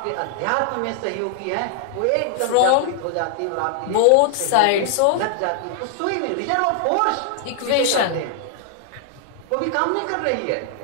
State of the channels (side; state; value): both; different; correlation 0.00